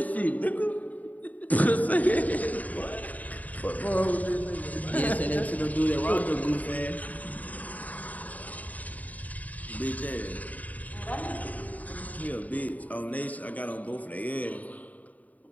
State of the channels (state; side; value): late; right; 0.074 ms